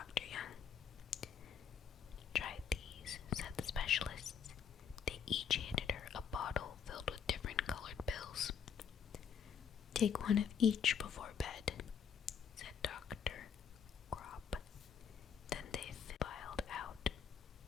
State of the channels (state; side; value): quieter; right; 7.4 dB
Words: Young. Try these, said the specialists. They each handed her a bottle filled with different colored pills. Take one of each before bed, said Dr. Grop. Then they filed out